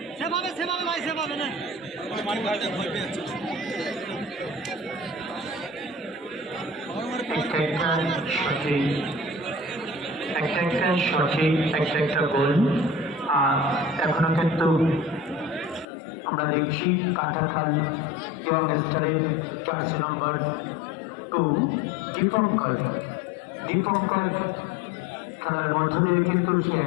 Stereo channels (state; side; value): drops out; right; at 15.9 s